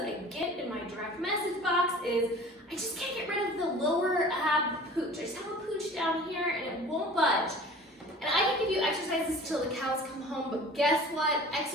I get in my direct message box is, I just can't get rid of the lower ab pooch. I just have a pooch down here and it won't budge. And I can give you exercises till the cows come home, but guess what?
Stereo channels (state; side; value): normal; both; correlation 0.43